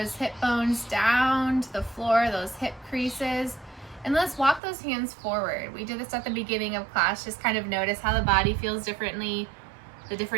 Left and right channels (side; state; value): left; drops out; at 4.6 s